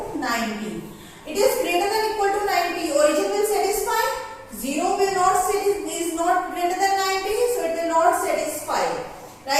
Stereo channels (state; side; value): identical; both; correlation 1.00